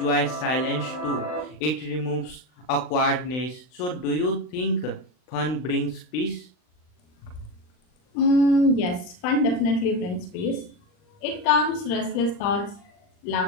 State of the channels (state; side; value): late; right; 39 ms